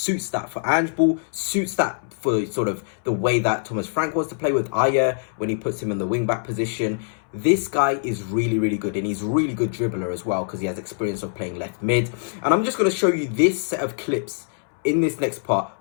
that for Ange Ball, suits that for sort of the way that Thomas Frank wants to play with Ayer when he puts him in the wing-back position. This guy is really, really good, and he's a really good dribbler as well because he has experience of playing left mid. And I'm just going to show you this set of clips in this next part,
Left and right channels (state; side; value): silent; right; 63 dB below the other